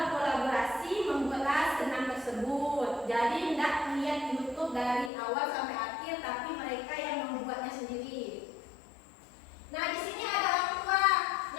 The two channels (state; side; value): drops out; right; at 5.1 s